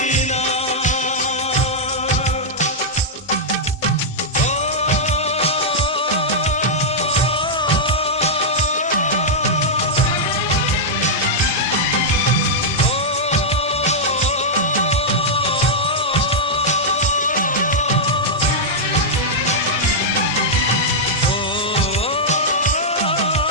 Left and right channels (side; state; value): both; normal; correlation -0.06